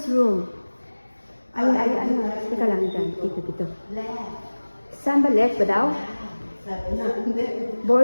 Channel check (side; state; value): both; inverted; correlation -1.00